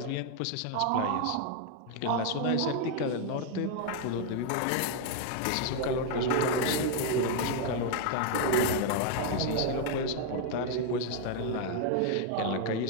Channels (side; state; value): both; different; correlation 0.00